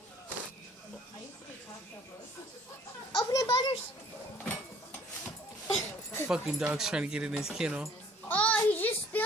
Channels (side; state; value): both; normal; correlation 0.56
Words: Open it, Butters. Fucking dog's trying to get in his kennel. Oh, he just